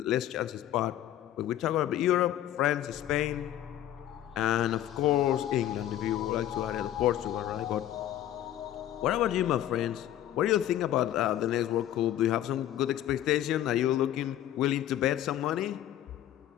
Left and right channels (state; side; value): quieter; right; 12.3 dB